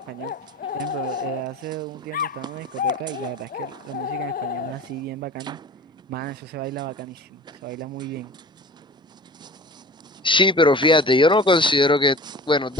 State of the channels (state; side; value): normal; both; correlation 0.39